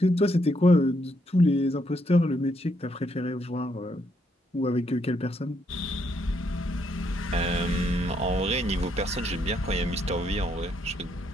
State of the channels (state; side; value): normal; both; correlation 0.75